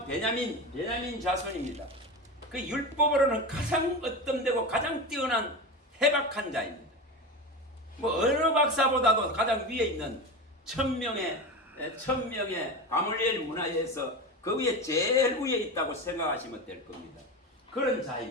베냐민 자손입니다. 그 율법으로는 가장 어떤되고 가장 뛰어난 해박한 자입니다. 뭐 어느 박사보다도 가장 위에 있는 천명의 가물리엘 문화에서 그 위에 제일 위에 있다고 생각하시면 될 겁니다. 그런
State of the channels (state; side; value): normal; both; correlation 0.24